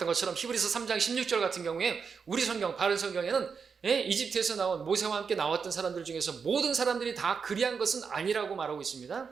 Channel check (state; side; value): quieter; left; 5.8 dB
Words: 것처럼 히브리서 3장 16절 같은 경우에 우리 성경, 바른 성경에는 이집트에서 나온 모세와 함께 나왔던 사람들 중에서 모든 사람들이 다 그리한 것은 아니라고 말하고 있습니다.